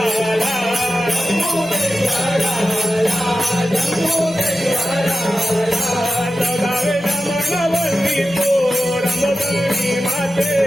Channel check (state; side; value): normal; both; correlation 0.93